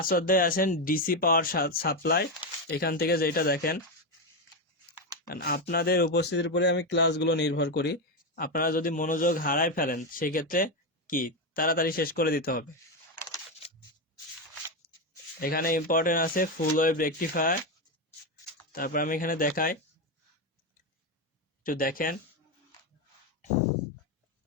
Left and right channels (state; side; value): normal; both; correlation 0.10